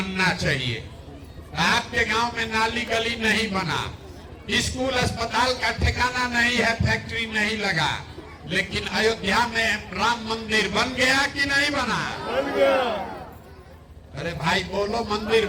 चाहिए। आपके गांव में नाली गली नहीं बना, स्कूल अस्पताल का ठिकाना नहीं है, फैक्ट्री नहीं लगा। लेकिन अयोध्या में राम मंदिर बन गया कि नहीं बना? बन गया। अरे भाई बोलो, मंदिर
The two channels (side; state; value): both; identical; correlation 1.00